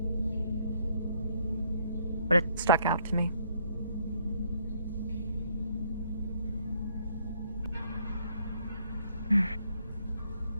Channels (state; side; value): inverted; both; correlation -0.67